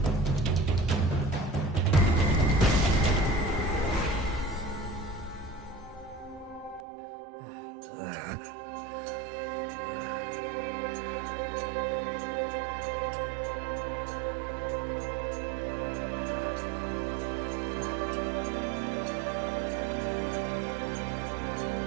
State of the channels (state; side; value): drops out; left; at 6.8 s